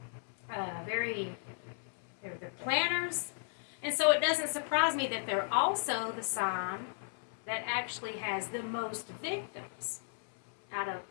planners. And so it doesn't surprise me that they're also the sign that actually has the most victims out of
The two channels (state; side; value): silent; right; 54 dB below the other